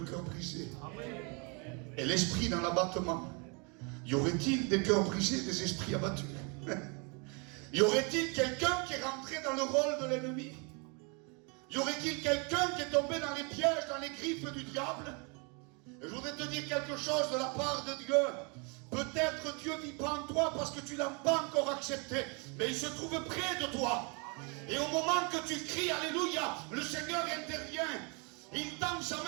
cœur brisé. Et l'esprit dans l'abattement. Y aurait-il des cœurs brisés, des esprits abattus? Y aurait-il quelqu'un qui est rentré dans le rôle de l'ennemi? Y aurait-il quelqu'un qui est tombé dans les pièges, dans les griffes du diable? Et je voudrais te dire quelque chose de la part de Dieu. Peut-être Dieu vit pas en toi parce que tu ne l'as pas encore accepté, mais il se trouve près de toi. Et au moment que tu cries Alléluia, le Seigneur intervient. Il tend sa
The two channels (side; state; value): left; quieter; 33.0 dB